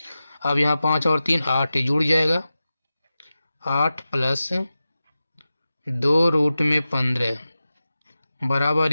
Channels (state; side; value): inverted; both; correlation -0.94